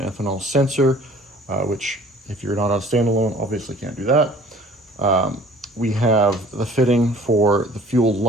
sensor, which if you're not on standalone, obviously can't do that. We have the fitting for the fuel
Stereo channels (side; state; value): both; normal; correlation 0.50